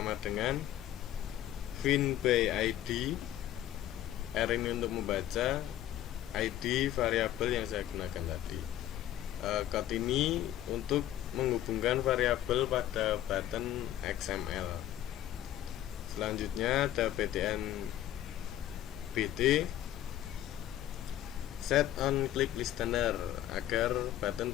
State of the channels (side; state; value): right; quieter; 12.6 dB